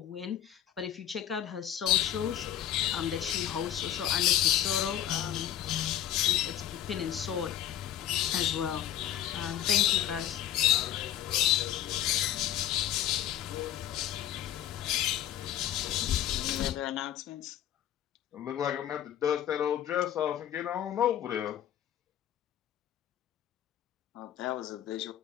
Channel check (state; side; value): quieter; right; 11.5 dB